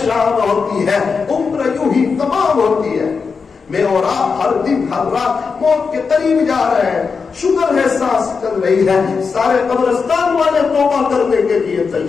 ہوتی ہے، عمر یوں ہی تمام ہوتی ہے۔ میں اور آپ ہر دن ہر رات موت کے قریب جا رہے ہیں، شکر ہے سانس چل رہی ہے۔ سارے قبرستان والے توبہ کرنے کے لیے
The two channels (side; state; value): right; quieter; 5.2 dB